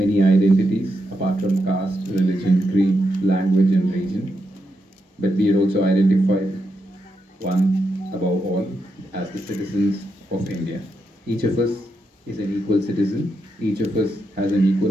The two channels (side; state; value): both; normal; correlation 0.83